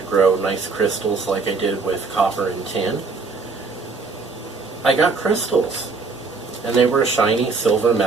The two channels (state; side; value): quieter; left; 4.3 dB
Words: grow nice crystals like I did with copper and tin, I got crystals. And they were a shiny silver